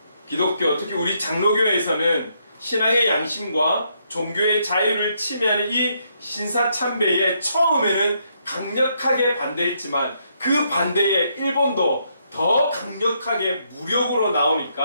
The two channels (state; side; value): inverted; both; correlation -0.75